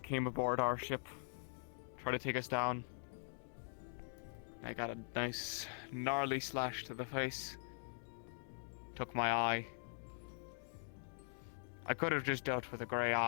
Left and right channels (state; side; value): silent; right; digital silence